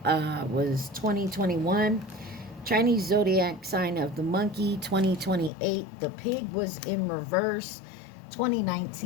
was 2021. Chinese zodiac sign of the monkey, 2028. The pig was in reverse,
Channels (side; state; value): right; drops out; at 5.5 s